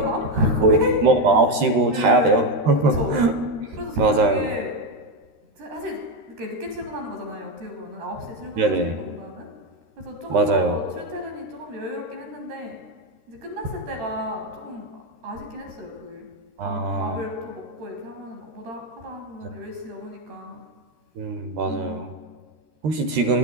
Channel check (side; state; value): left; late; 13 ms